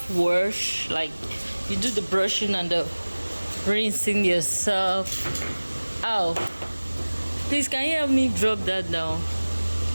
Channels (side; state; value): both; inverted; correlation -1.00